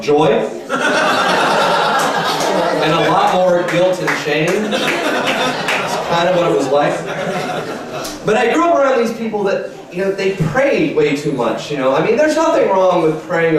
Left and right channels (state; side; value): identical; both; correlation 1.00